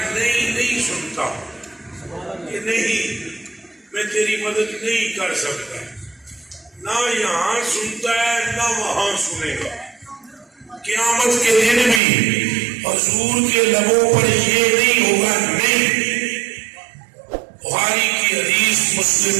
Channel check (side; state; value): left; drops out; at 12.0 s